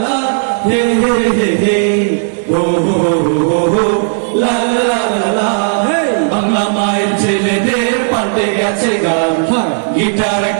লা হে হে হে হে হো হো হো হো লা লা লা লা লা। বাংলা মায়ের ছেলেদের পাল্টে গেছে গান, গিটার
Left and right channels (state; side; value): silent; left; digital silence